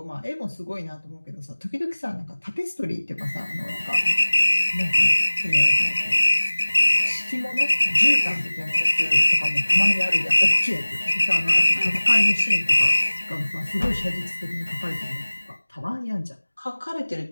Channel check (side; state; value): both; inverted; correlation -1.00